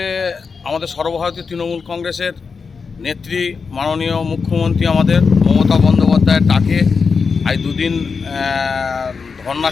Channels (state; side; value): quieter; right; 5.2 dB